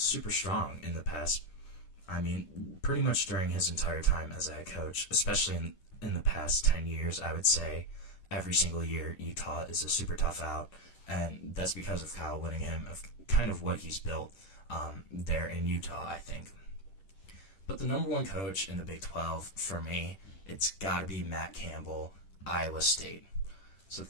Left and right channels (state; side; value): late; right; 10 ms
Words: strong in the past. I mean, pretty much during his entire time as a head coach, especially in the past 10 years, I would say every single year Utah is a super tough out, and that's because of Kyle Whittingham, of kind of what he's built there in Utah, I think. But the number 1 coach in the Big 12, for me, it's got to be Matt Campbell, Iowa State. So